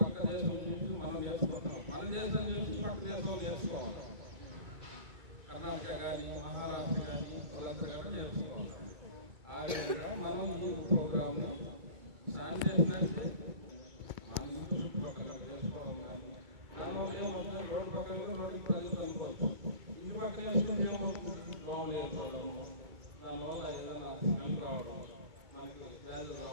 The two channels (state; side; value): late; left; 2.2 ms